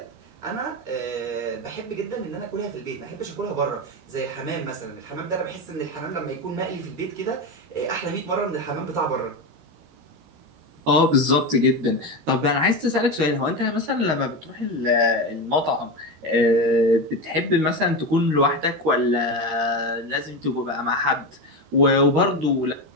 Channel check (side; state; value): left; late; 13 ms